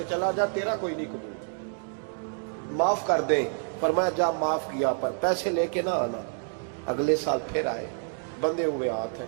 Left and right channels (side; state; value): left; silent; 59 dB below the other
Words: چلا جا، تیرا کوئی نہیں قبول، معاف کر دیں۔ فرمایا جا معاف کیا، پر پیسے لے کے نہ آنا۔ اگلے سال پھر آئے، بندے ہوئے ہاتھ ہیں،